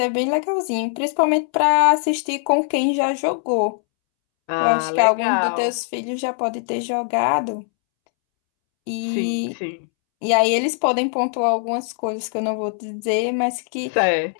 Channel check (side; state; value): right; silent; 65 dB below the other